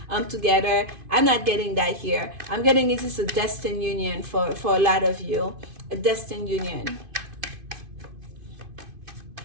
together. I'm not getting that here. I'm getting this is a destined union for a lot of you, a destined union.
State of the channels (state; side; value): late; left; 2.5 ms